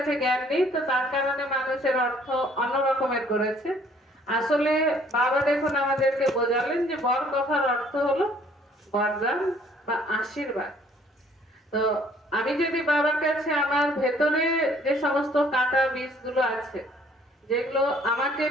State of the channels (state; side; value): normal; both; correlation 0.59